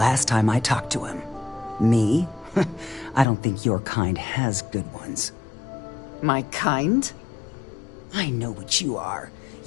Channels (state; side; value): drops out; right; at 3.2 s